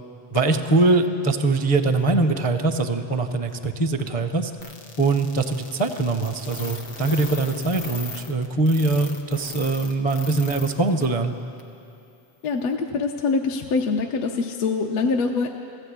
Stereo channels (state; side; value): late; right; 7.6 ms